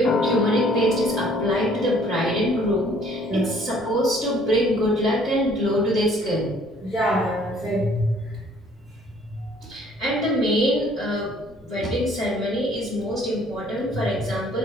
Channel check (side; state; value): both; normal; correlation 0.58